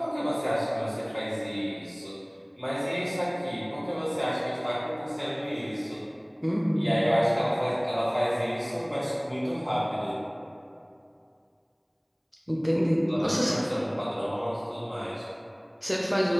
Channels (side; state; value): both; identical; correlation 1.00